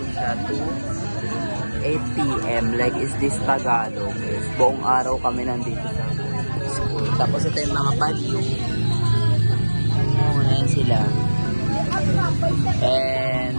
siya to 8 p.m. Like, is this Tagalog? Is buong araw kami nandito sa Tapos ito yung mga palyo. Ayan sila. And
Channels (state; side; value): inverted; both; correlation -1.00